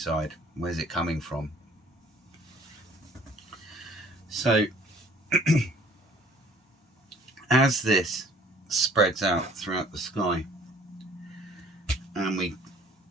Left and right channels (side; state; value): both; normal; correlation 0.55